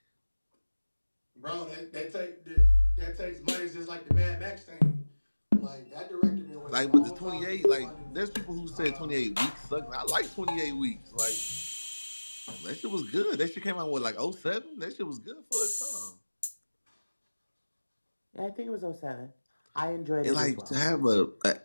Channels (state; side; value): inverted; both; correlation -1.00